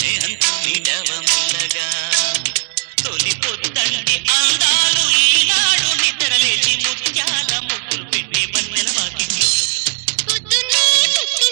మీటవ మెల్లగా తొలి పొద్దండి అందాలు ఈనాడు నిద్రలేచి ముత్యాల ముగ్గులు పెట్టే వన్నెల వాకిట్లో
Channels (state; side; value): silent; left; 68 dB below the other